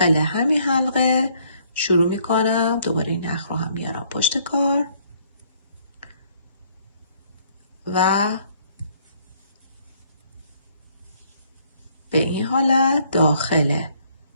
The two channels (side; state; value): both; inverted; correlation -0.64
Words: همین حلقه شروع میکنم. دوباره این نخ رو هم میارم پشت کار و به این حالت داخل